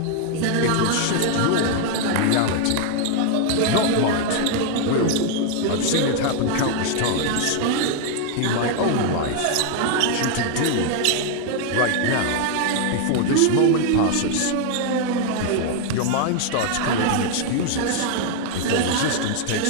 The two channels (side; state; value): both; different; correlation 0.00